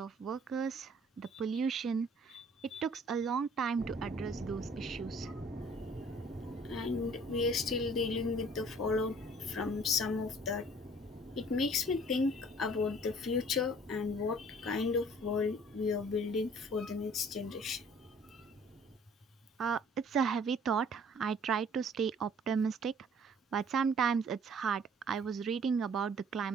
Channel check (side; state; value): both; normal; correlation 0.54